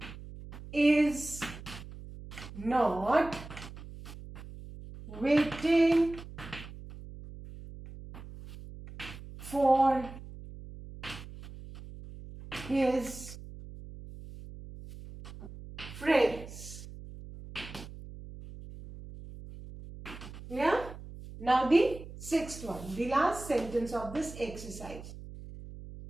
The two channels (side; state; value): right; noise; hum, 14 dB below the sound